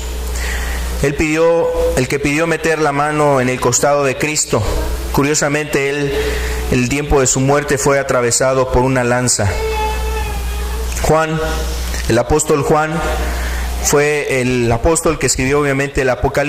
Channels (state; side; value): identical; both; correlation 1.00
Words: el que pidió meter la mano en el costado de Cristo. Curiosamente, el tiempo de su muerte fue atravesado por una lanza. Juan, el apóstol Juan, fue el apóstol que escribió obviamente el